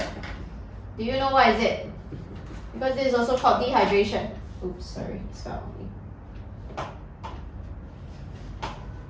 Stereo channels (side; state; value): both; identical; correlation 1.00